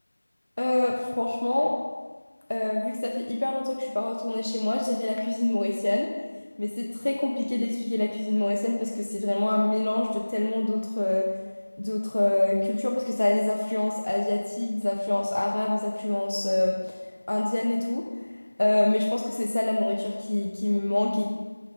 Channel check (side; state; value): both; inverted; correlation -1.00